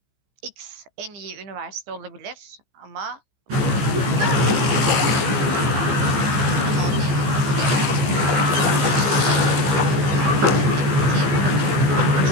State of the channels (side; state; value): left; late; 15 ms